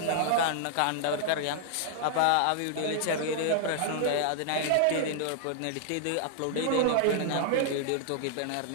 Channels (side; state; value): both; different; correlation -0.01